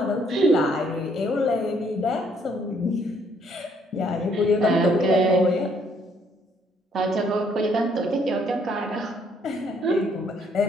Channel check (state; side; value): normal; both; correlation 0.67